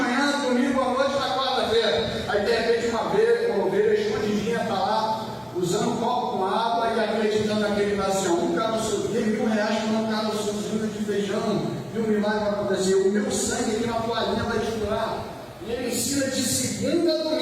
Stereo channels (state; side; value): identical; both; correlation 1.00